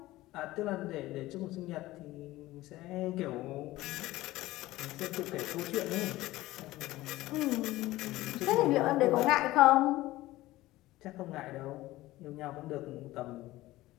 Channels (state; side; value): quieter; right; 17.4 dB